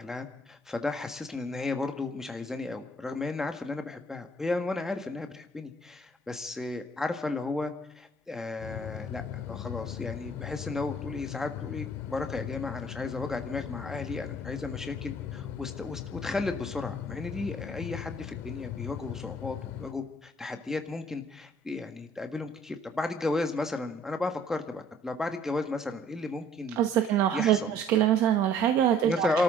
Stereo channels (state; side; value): normal; both; correlation 0.57